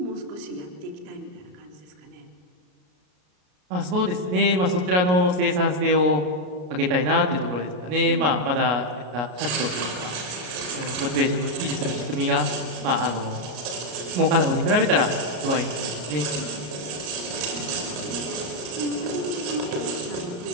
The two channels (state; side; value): late; left; 33 ms